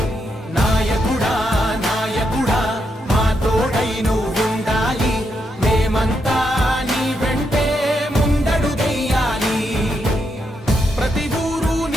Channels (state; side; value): normal; both; correlation 0.81